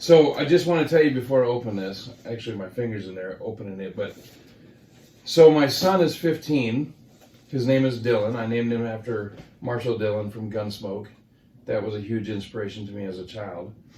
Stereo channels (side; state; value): both; identical; correlation 1.00